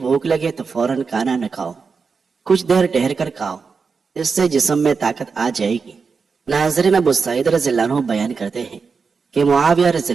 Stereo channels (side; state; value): left; quieter; 5.2 dB